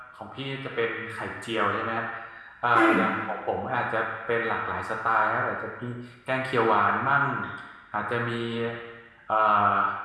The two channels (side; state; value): both; identical; correlation 1.00